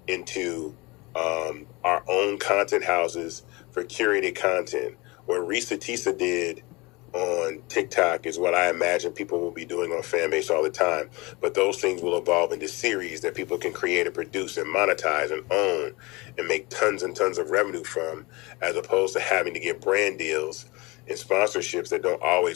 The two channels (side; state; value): right; quieter; 24.7 dB